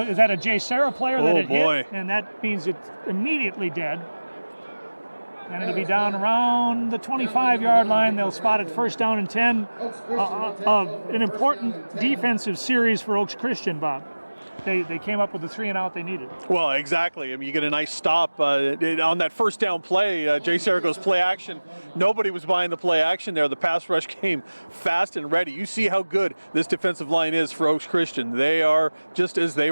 that a JSerra player that it hit? And that means it's immediately dead. And it'll be down around the 25-yard line. They'll spot it 1st down and 10. An important defensive series for Oaks Christian, Bob. They came up with the 3-and-out they needed. Well, exactly. I mean, you get a nice stop on that 1st down play. JSerra goes play action. Nobody was buying the play action there. The pass rush came fast and ready. You see how good this defensive line is for Oaks Christian. They are just as they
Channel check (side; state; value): both; inverted; correlation -1.00